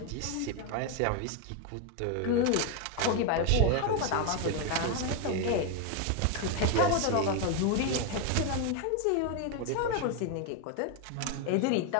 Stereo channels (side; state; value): both; different; correlation 0.01